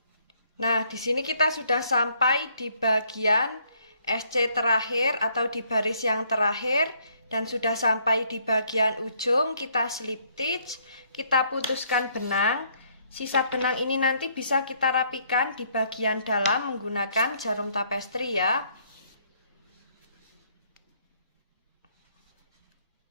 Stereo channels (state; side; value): inverted; both; correlation -0.67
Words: Nah, di sini kita sudah sampai di bagian SC terakhir atau di baris yang terakhir dan sudah sampai di bagian ujung. Kita slip stitch, kita putuskan benang. Sisa benang ini nanti bisa kita rapikan di bagian dalam menggunakan jarum tapestri ya.